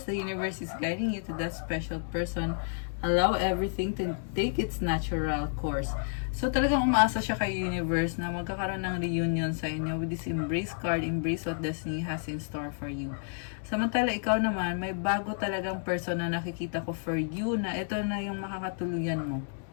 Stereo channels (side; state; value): right; silent; 57 dB below the other